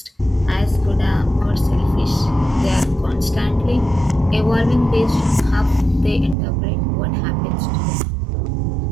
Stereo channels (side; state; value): left; drops out; at 6.4 s